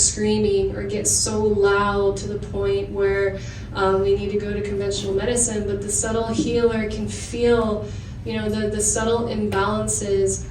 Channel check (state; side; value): identical; both; correlation 1.00